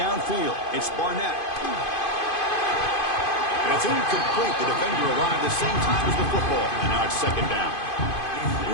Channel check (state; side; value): late; right; 2.5 ms